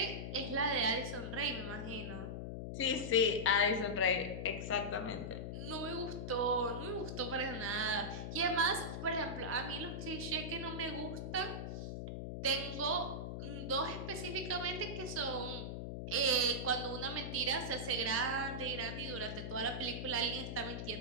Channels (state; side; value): noise; left; hum, 5 dB below the sound